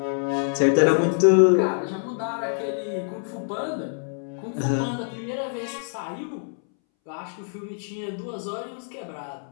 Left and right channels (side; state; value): right; silent; 61 dB below the other